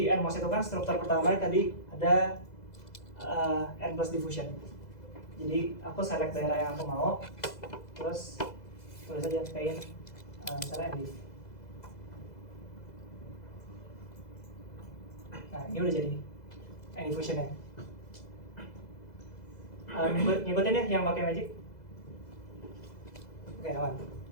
NMOS itu kan struktur pertama tadi ada N plus diffusion. Jadi aku select daerah yang aku mau, terus tulis aja paint misalnya ND. Nah ini udah jadi N diffusionnya. Ngikutin ya yang pakai magic. Oke aman.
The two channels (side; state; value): right; late; 2.0 ms